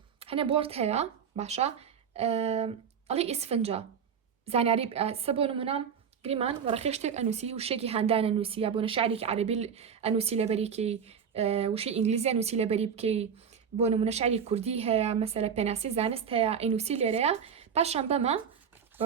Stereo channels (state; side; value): quieter; left; 7.2 dB